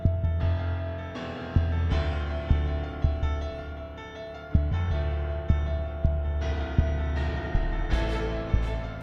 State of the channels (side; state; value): both; identical; correlation 1.00